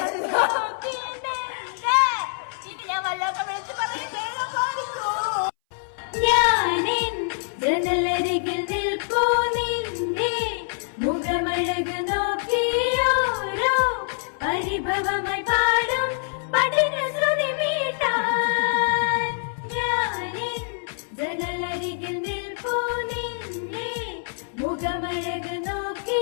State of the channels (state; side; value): silent; right; 61 dB below the other